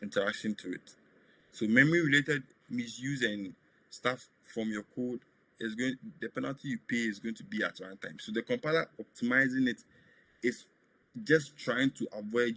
interaction to it. So memory related misuse and stuff from your code the penalty you pay is going to be at runtime. So the compiler optimizing it is just trying to avoid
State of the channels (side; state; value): both; identical; correlation 1.00